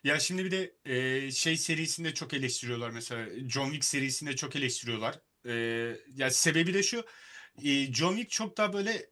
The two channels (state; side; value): identical; both; correlation 1.00